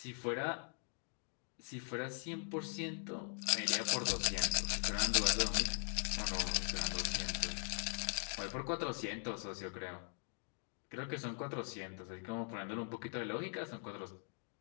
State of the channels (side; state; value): right; silent; 50 dB below the other